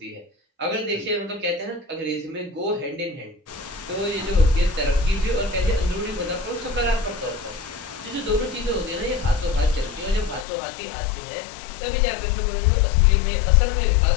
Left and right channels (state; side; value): drops out; right; at 10.5 s